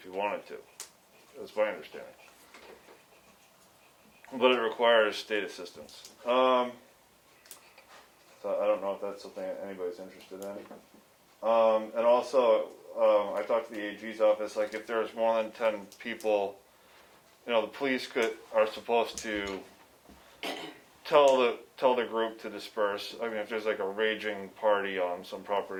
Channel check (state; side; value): identical; both; correlation 1.00